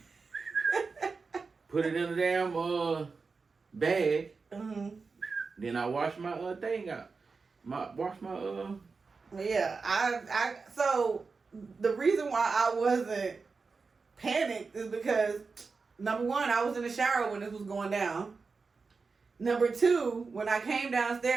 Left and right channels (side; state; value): left; quieter; 4.5 dB